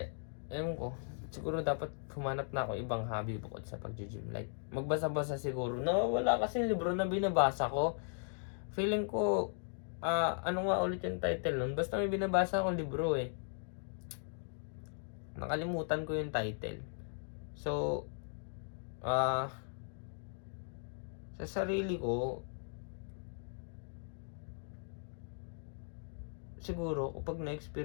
ewan ko, siguro dapat humanap na ako ibang hobby bukod sa pag-gym. Like magbasa-basa siguro. Wala kasi libro na binabasa ko. Feeling ko, ano nga ulit yung title nun? Basta may binabasa akong libro Nakalimutan ko yung title. So, sa sarili ko, siguro, kapag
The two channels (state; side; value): silent; right; digital silence